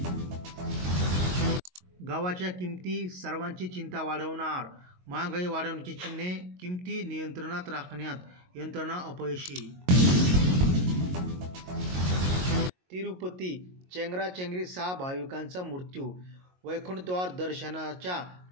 गव्हाच्या किमती सर्वांची चिंता वाढवणार. महागाई वाढण्याची चिन्हे, किमती नियंत्रणात राखण्यात यंत्रणा अपयशी. तिरुपती चेंगराचेंगरी, 6 भाविकांचा मृत्यू. वैकुंठद्वार दर्शनाच्या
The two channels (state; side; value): late; left; 22 ms